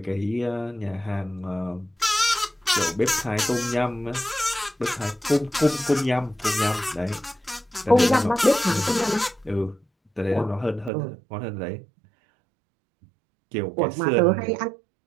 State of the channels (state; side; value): drops out; left; at 10.9 s